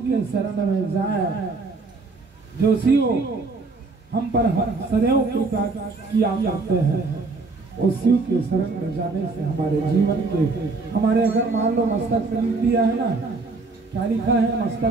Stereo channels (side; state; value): left; quieter; 3.8 dB